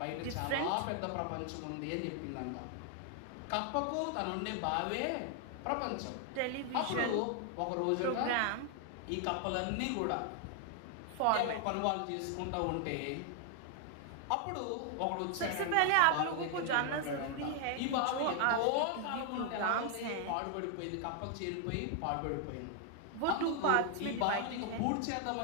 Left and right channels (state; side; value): different; both; correlation 0.00